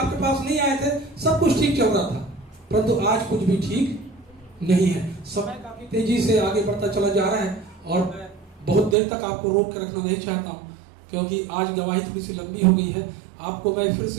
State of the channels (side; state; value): left; drops out; at 9.0 s